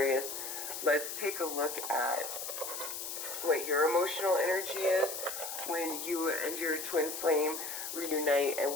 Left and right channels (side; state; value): left; noise; hiss, 6 dB below the sound